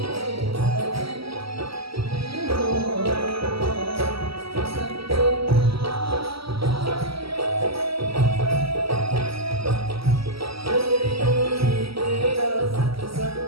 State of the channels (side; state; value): left; late; 0.75 ms